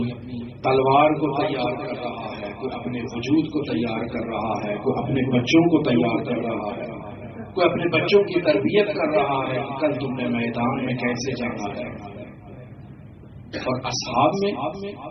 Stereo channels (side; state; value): both; identical; correlation 1.00